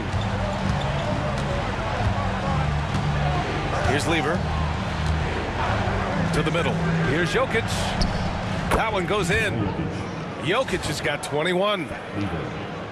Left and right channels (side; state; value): both; identical; correlation 1.00